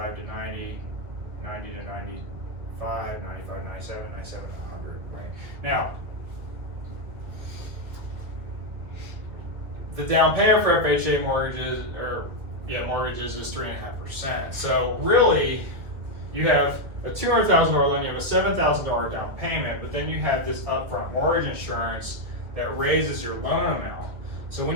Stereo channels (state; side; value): late; left; 2.1 ms